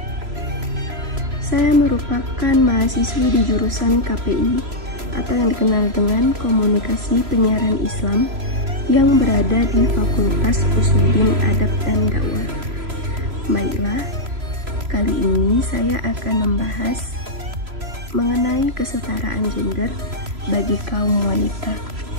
Saya merupakan mahasiswi di jurusan KPI atau yang dikenal dengan Komunikasi Penyiaran Islam yang berada di Fakultas Usuluddin Adab dan Dakwah. Baiklah, kali ini saya akan membahas mengenai kesetaraan gender bagi kaum wanita.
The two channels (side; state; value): left; late; 3.0 ms